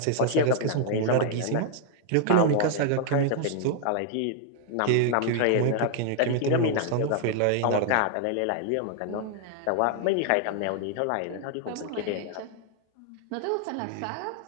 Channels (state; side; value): different; both; correlation 0.00